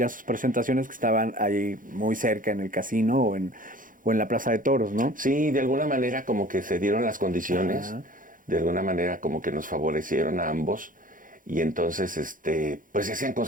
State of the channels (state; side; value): late; left; 0.39 ms